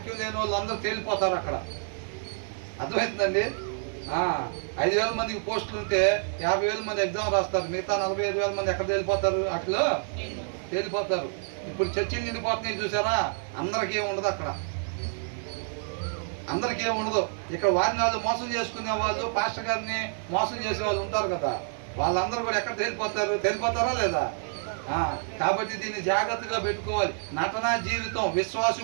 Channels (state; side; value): silent; left; 59 dB below the other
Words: లేని వాళ్ళు అందరూ తేలిపోతారు అక్కడ. అర్థమవుతుందండి? 5,000 మందికి పోస్టులు ఉంటే 50,000 మంది ఎగ్జామ్ రాస్తారు. మిగతా 45,000 మంది ఎక్కడ తేలిపోతారు? అట్లా తేలిపోతారు. ఇప్పుడు చర్చిలు నిండిపోతున్నాయి చూసారా? అందరికీ ఉండదు అక్కడ, అందరికీ ఉండదు. ఇక్కడ వారిని వాళ్ళు మోసం చేసుకునే వాళ్ళు, పాస్టర్ గారిని మోసం చేసే వాళ్ళు ఉంటారు కదా, వాళ్ళందరూ కూడా ఎక్కడ తేలిపోతారు? తేలిపోతారా లేదా? కాబట్టి దీన్ని జాగ్రత్తగా పెట్టుకోవాలి. నటనా జీవితం